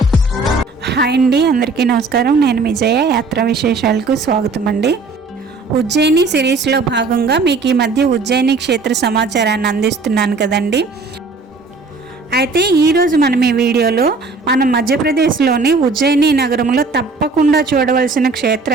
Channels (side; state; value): left; quieter; 3.9 dB